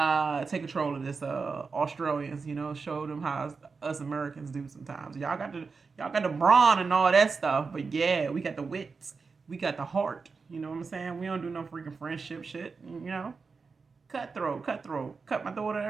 take control of this Australians. Show them how us Americans do sometimes. Y'all got the brawn and all that stuff, but yeah, we got the wits. We got the heart, you know what I'm saying? We don't do no freaking friendship shit, Cutthroat, cut my throat and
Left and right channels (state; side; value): quieter; left; 4.8 dB